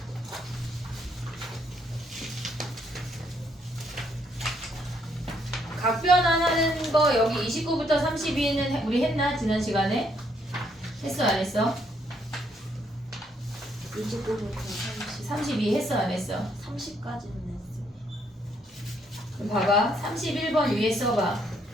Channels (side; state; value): both; normal; correlation 0.71